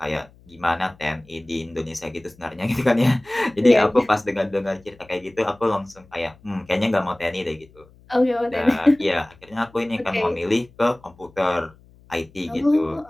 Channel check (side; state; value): left; noise; hum, 27 dB below the sound